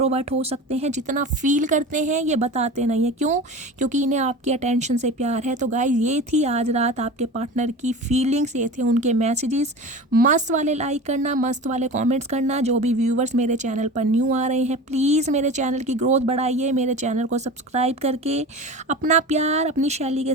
हो सकते हैं, जितना फील करते हैं ये बताते नहीं है। क्यों? क्योंकि इन्हें आपकी अटेंशन से प्यार है। तो गाइस ये थी आज रात आपके पार्टनर की फीलिंग्स, ये थे उनके मैसेजेस। मस्त वाले लाइक करना, मस्त वाले कॉमेंट्स करना। जो भी व्यूवर्स मेरे चैनल पर न्यू आ रहे हैं, प्लीज़ मेरे चैनल की ग्रोथ बढ़ाइए। मेरे चैनल को सब्सक्राइब करके अपना प्यार अपनी शैली के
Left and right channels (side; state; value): both; normal; correlation 0.33